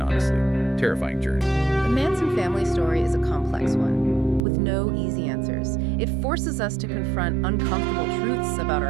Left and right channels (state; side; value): drops out; left; at 4.4 s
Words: honestly terrifying journey. The Manson family story is a complex one, with no easy answers. It forces us to confront uncomfortable truths about